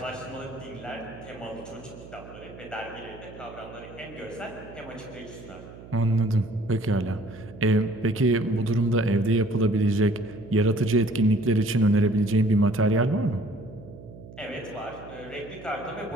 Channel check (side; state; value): right; noise; hum, 17 dB below the sound